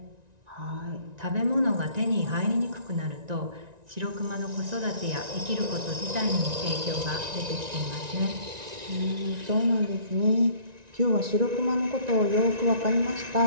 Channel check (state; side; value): late; left; 1.9 ms